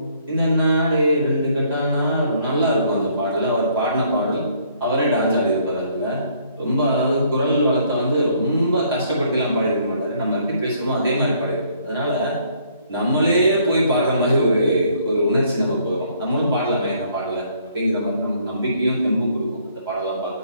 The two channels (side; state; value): both; inverted; correlation -0.64